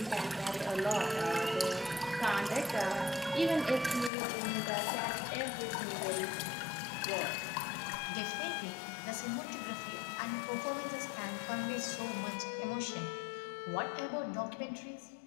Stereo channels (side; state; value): right; drops out; at 4.1 s